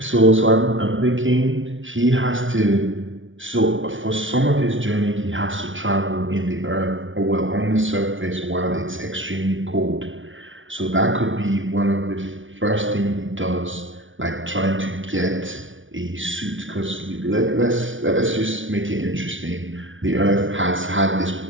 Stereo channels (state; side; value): late; left; 0.56 ms